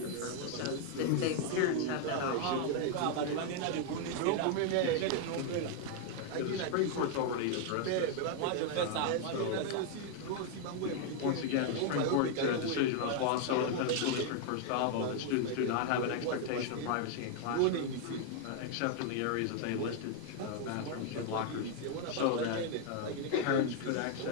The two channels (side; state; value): both; different; correlation 0.00